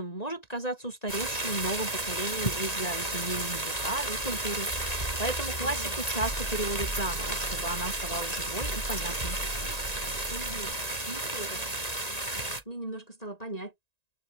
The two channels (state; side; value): late; right; 1.9 ms